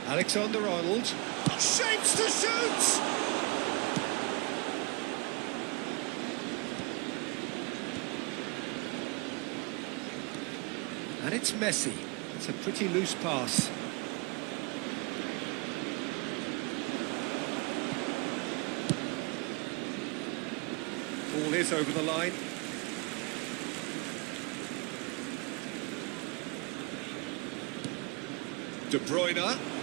Alexander-Arnold. Shapes to shoot! And it's Messi. It's a pretty loose pass. Ball is over the line. De Bruyne. And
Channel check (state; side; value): quieter; left; 28.7 dB